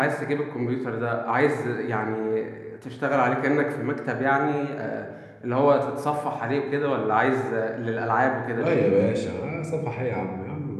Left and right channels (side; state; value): both; identical; correlation 1.00